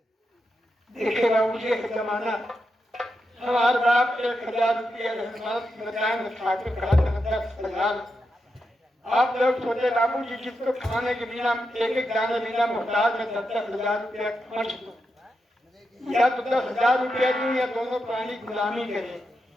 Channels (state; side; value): normal; both; correlation 0.86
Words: देखेगा मुझे जमाना हमारे बाप 1000 रुपया बताएंगे ठाकुर कहा था 10,000। आप लोग सोचे बाबू जी जिसको खाने के बिना एक एक दाने बिना मोहताज में 10,000 रुपया खर्च दो या तो 10,000 रुपया दूं या दोनों प्राणी गुलामी करे।